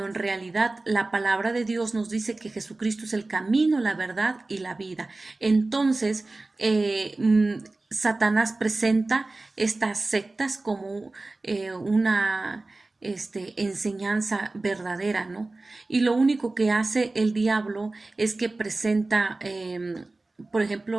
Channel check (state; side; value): quieter; left; 3.1 dB